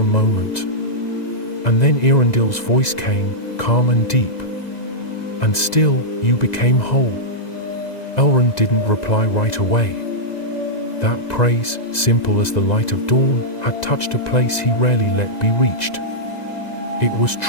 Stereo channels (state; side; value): late; right; 1.9 ms